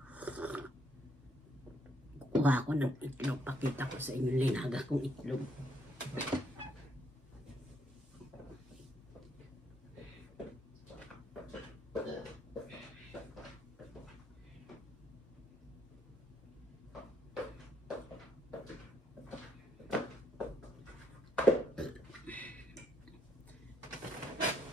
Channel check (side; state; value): both; normal; correlation 0.73